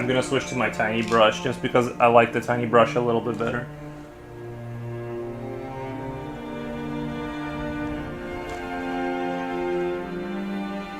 gonna switch to my tiny brush just because I like the tiny brush a little bit better.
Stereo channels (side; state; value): both; identical; correlation 1.00